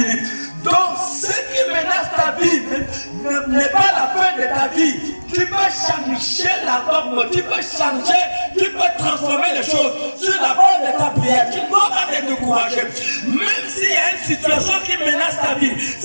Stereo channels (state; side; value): inverted; both; correlation -1.00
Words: Donc, ce qui menace ta vie n'est pas la fin de ta vie. Tu peux changer la norme, tu peux changer, tu peux transformer les choses sur la base de ta prière. Tu ne dois pas te décourager. Même s'il y a une situation qui menace ta vie,